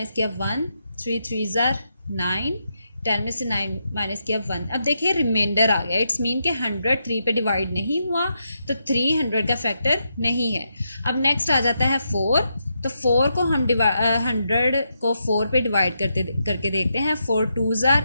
किया 1. 3 3s are 9. 10 में से 9 माइनस किया 1. अब देखिए रिमाइंडर आ गया. इट्स मीन के 100 3 पे डिवाइड नहीं हुआ, तो 300 का फैक्टर नहीं है. अब नेक्स्ट आ जाता है 4. तो 4 को हम 100 को 4 पे डिवाइड करके देखते हैं. 4 2s are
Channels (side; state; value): both; inverted; correlation -0.83